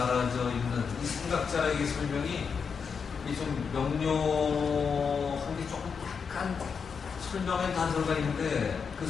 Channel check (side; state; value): right; quieter; 6.0 dB